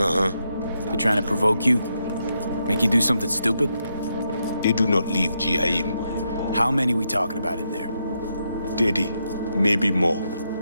They're trying to provoke you? Make you do something stupid? They do not leave GIM. How many we talking about in there? 30, maybe more.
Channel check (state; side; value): inverted; both; correlation -0.82